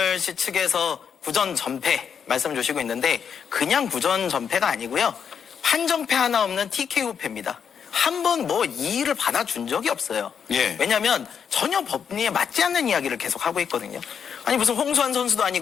씨 측에서 구전 전패 말씀 주시고 있는데 그냥 구전 전패가 아니고요. 판정패 하나 없는 TKO 패입니다. 한 번 뭐 이의를 받아준 적이 없어요. 예. 왜냐하면 전혀 법리에 맞지 않는 이야기를 계속 하고 있거든요. 아니 무슨 홍수환 선수도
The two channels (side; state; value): right; quieter; 7.3 dB